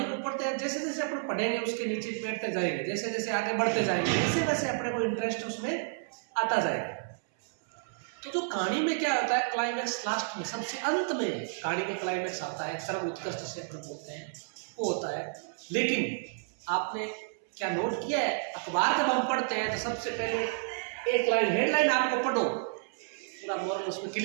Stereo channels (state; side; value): silent; left; 57 dB below the other